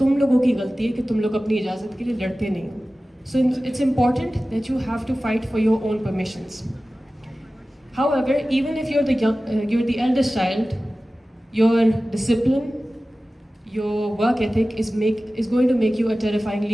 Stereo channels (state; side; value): normal; both; correlation 0.96